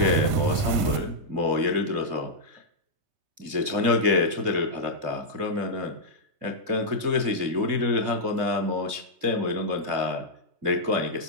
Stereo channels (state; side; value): late; left; 2.6 ms